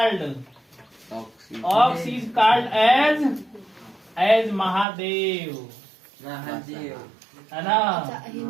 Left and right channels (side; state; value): left; drops out; at 4.9 s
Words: is called as Mahadev, है ना।